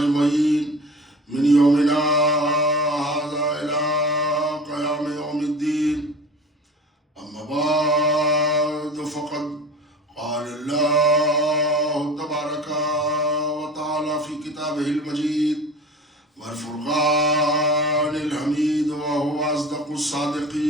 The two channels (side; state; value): both; normal; correlation 0.36